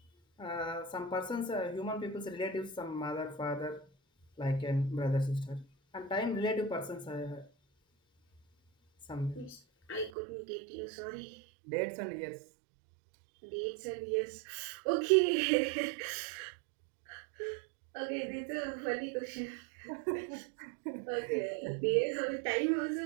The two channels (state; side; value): drops out; left; at 10.1 s